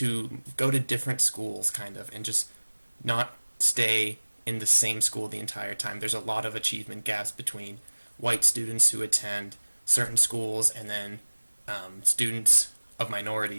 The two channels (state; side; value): inverted; both; correlation -1.00